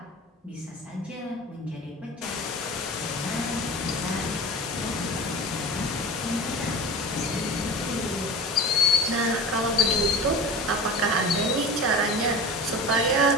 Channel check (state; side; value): normal; both; correlation 0.33